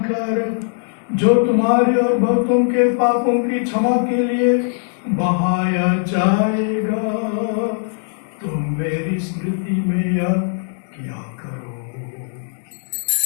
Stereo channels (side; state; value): right; silent; digital silence